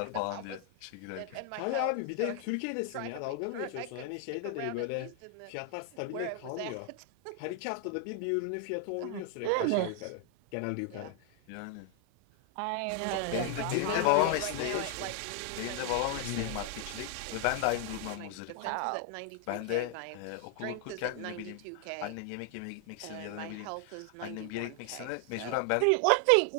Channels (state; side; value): different; both; correlation 0.00